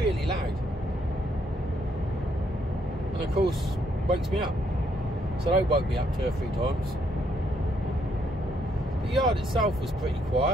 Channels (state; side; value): normal; both; correlation 0.72